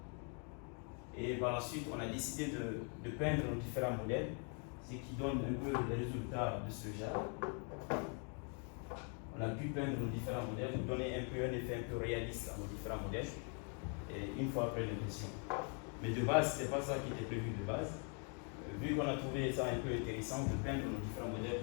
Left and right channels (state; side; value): quieter; right; 39.8 dB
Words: et par la suite, on a décidé de peindre nos différents modèles, ce qui donne un peu les résultats de ce genre. On a pu peindre nos différents modèles, pour donner un effet un peu réaliste à nos différents modèles, et une fois après l'impression. Mais de base, ce n'était pas ça qui était prévu de base. Vu qu'on a trouvé ça un peu intéressant de peindre nos différents modèles